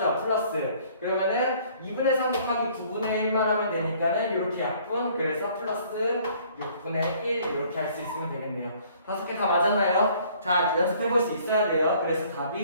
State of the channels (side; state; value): both; inverted; correlation -0.58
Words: 플러스. 그러면은 2분의 3 곱하기 9분의 1만 하면 되니까는 이렇게 약분. 그래서 플러스 6분의 1 이렇게 할 수 있으면 되겠네요. 5개 다 맞았나요? 자, 연습해볼 수 있어야 돼요. 그래서